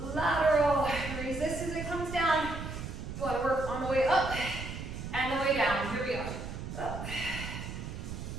Lateral. Resist as it comes down. Want to work on the way up and the way down. Here we go. Up.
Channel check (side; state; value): right; noise; rumble, 7 dB below the sound